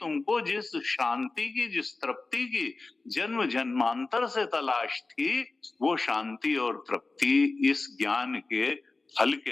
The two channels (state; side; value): quieter; right; 3.6 dB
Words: जिस शांति की, जिस तृप्ति की जन्म जन्मांतर से तलाश थी, वो शांति और तृप्ति इस ज्ञान के फल